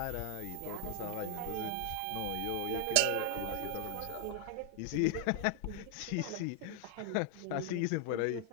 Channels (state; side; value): different; both; correlation 0.00